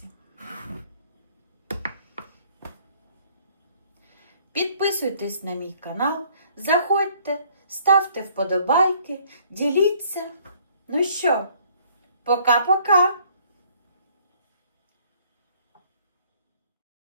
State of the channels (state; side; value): inverted; both; correlation -0.61